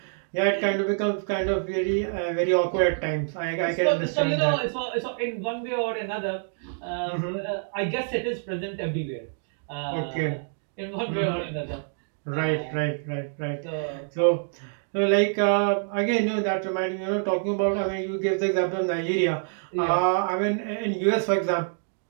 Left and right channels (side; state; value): left; silent; digital silence